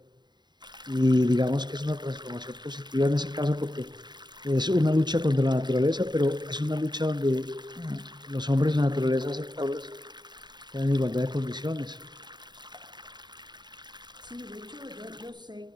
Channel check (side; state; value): left; late; 0.21 ms